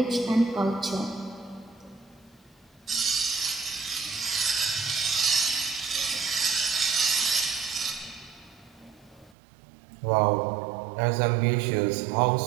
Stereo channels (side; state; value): left; drops out; at 9.3 s